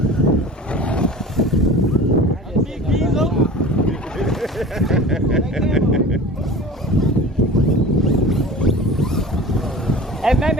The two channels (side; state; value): both; normal; correlation 0.38